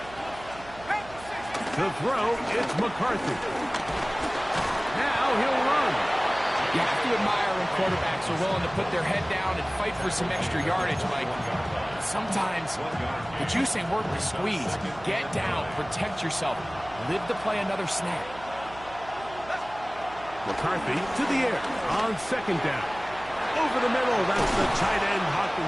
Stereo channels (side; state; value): right; noise; hum, 18 dB below the sound